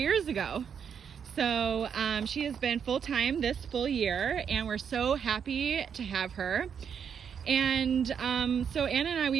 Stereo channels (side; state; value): left; quieter; 7.4 dB